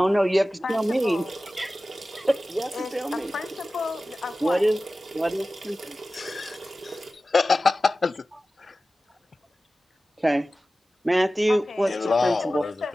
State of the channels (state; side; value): normal; both; correlation 0.95